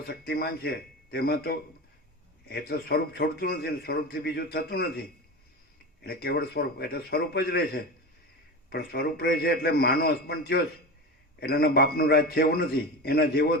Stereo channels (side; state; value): both; normal; correlation 0.25